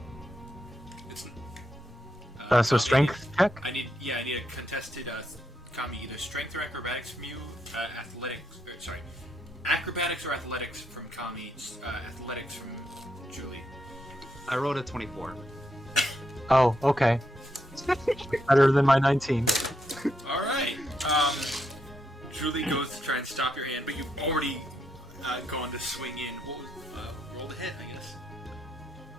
It's, So strength check. I need a contested Kami, either strength or acrobatics from you, acrobatics or athletics from Kami, athletics from Julie. I rolled a 24. Oh, okay. Better than my 19. All right. Julie goes to try and stop your hand, but you've already gone to swing in. What was roll the hit? I guess.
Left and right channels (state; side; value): normal; both; correlation 0.80